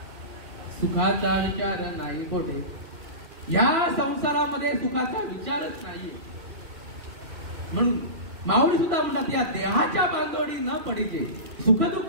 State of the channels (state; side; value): late; left; 3.0 ms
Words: सुखाचा विचार नाही कोठे. या संसारामध्ये सुखाचा विचारच नाहीये. म्हणून माऊली सुद्धा म्हणतात, या देहाच्या बांधवडी न पडीचे,